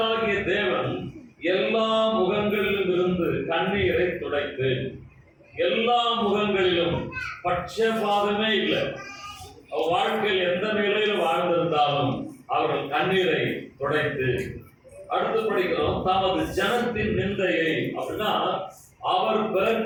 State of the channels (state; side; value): identical; both; correlation 1.00